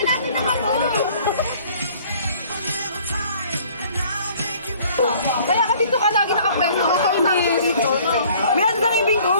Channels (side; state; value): both; inverted; correlation -0.55